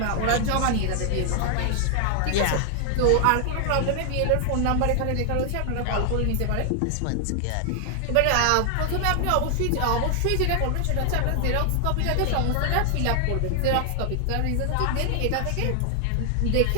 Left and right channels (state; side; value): different; both; correlation 0.00